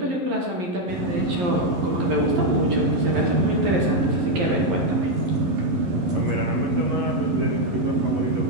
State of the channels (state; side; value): late; left; 11 ms